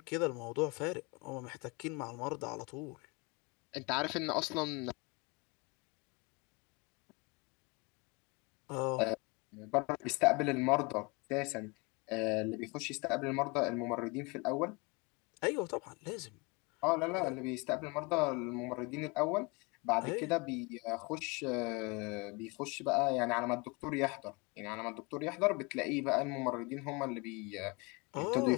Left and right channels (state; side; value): quieter; right; 28.3 dB